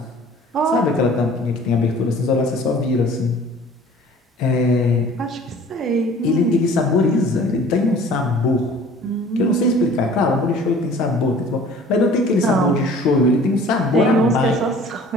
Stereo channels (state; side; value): normal; both; correlation 0.48